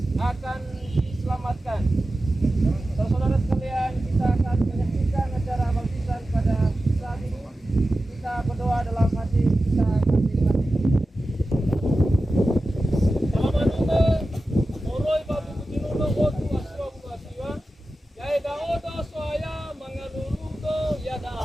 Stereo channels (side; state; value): both; normal; correlation 0.94